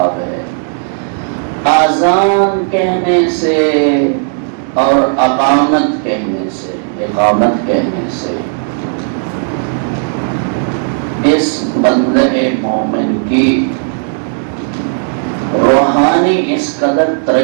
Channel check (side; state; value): left; silent; digital silence